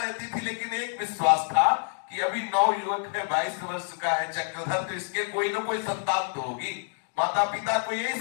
थी, लेकिन एक विश्वास था कि अभी 9 युवक है, 22 वर्ष का है चक्रधर, तो इसके कोई ना कोई संतान तो होगी। माता पिता को यही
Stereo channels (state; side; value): silent; right; 60 dB below the other